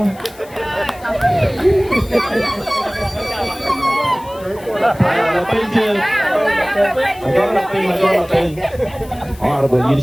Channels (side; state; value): left; noise; hiss, 23 dB below the sound